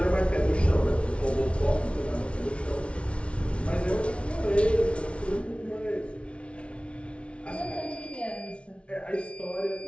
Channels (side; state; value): right; late; 0.060 ms